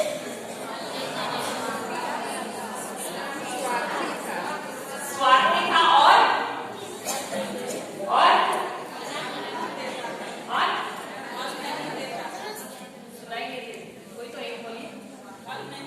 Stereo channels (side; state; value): both; identical; correlation 1.00